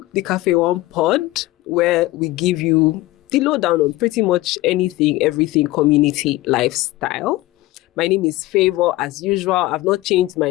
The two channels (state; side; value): quieter; right; 18.3 dB